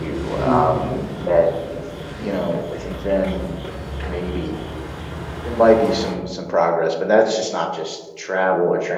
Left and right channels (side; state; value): both; identical; correlation 1.00